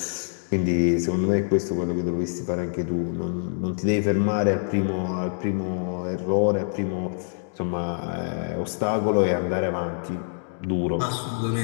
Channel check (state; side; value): silent; right; digital silence